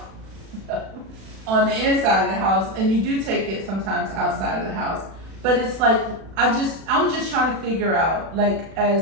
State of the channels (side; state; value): left; late; 36 ms